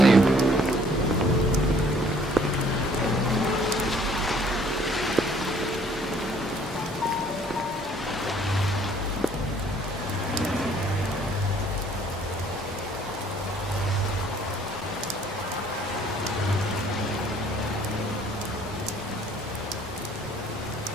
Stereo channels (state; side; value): normal; both; correlation 0.59